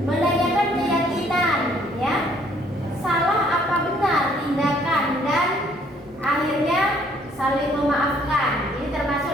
menanyakan keyakinan ya. Salah apa benar tindakan dan akhirnya saling memaafkan. Ini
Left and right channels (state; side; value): normal; both; correlation 0.63